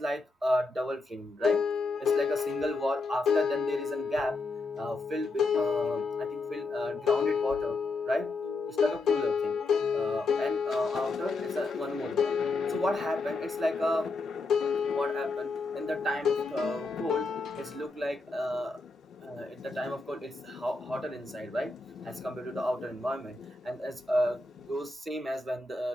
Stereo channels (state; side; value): quieter; right; 3.4 dB